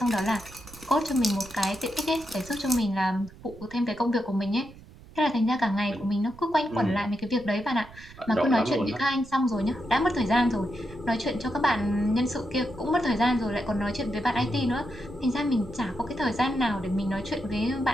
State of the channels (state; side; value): noise; right; rumble, 20 dB below the sound